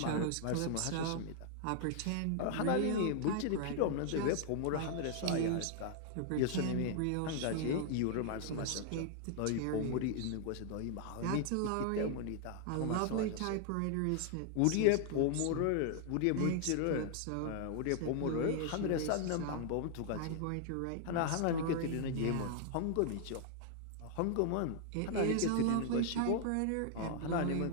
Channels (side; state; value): both; different; correlation 0.00